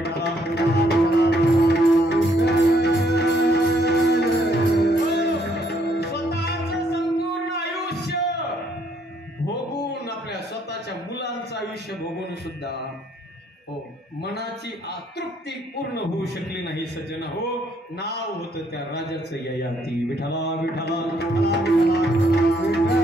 पूर्ण होऊ शकली नाही सज्जन हो. नाव होतं त्या राजाचं ययाती. विठ्ठला विठ्ठला विठ्ठला विठ्ठला.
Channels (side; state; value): both; normal; correlation 0.68